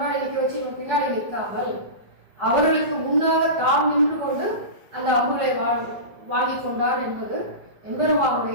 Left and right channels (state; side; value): late; left; 5.2 ms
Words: நிற்க வச்சு இவன் பின்னாடி நிற்காமல் அவர்களுக்கு முன்னாக தாம் நின்று கொண்டு அந்த அம்புகளை வாங்கி கொண்டார் என்பது